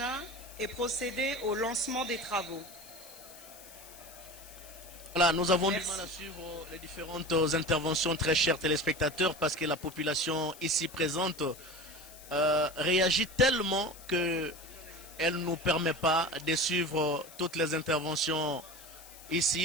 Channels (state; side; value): noise; left; hiss, 18 dB below the sound